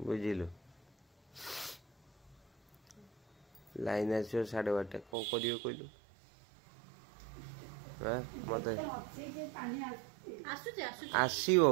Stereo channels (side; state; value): left; drops out; at 5.1 s